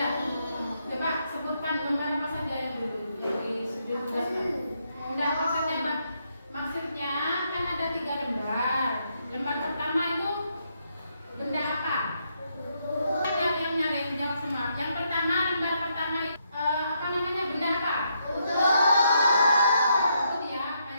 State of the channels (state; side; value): inverted; both; correlation -0.77